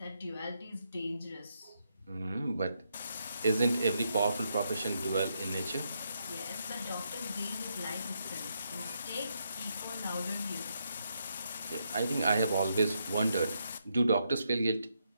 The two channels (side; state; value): both; inverted; correlation -0.80